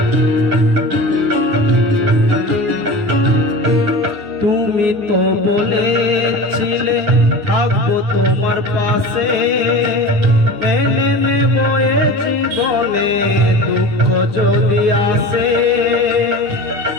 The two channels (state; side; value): late; left; 9.9 ms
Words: তুমি তো বলেছিলে থাকবো তোমার পাশে, মেনে নেব এ জীবনে দুঃখ যদি আসে।